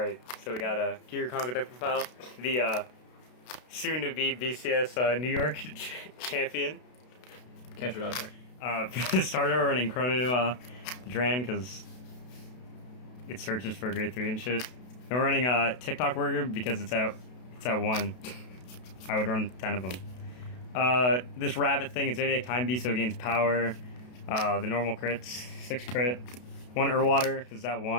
so we got a Gear Chronicle deck profile. The soon-to-be BCS New York champion. Can't shoot out there. For the starter, we're running Chrono Dran because it searches for a grade 3 and shit. And we're running TikTok Worker because it's at 1. I would run 10 of them. This rabbit thing, it's Zodiac Time Beast, so it gains power. The normal crits, 6 crit. 1 Urwater because it's at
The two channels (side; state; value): right; late; 32 ms